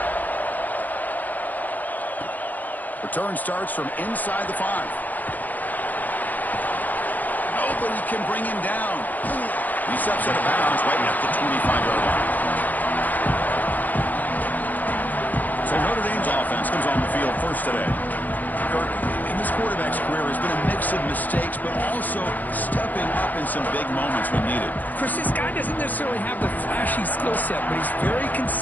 Return starts from inside the 5. Nobody can bring him down. He steps out of bounds right at the 25-yard line. So Notre Dame's offense comes on the field first today. Kirk, in this quarterback's career has been a mix of mistakes, but also stepping up in some big moments when needed. Chris, this guy doesn't necessarily have the flashy skill set, but he's very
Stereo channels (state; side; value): late; right; 0.082 ms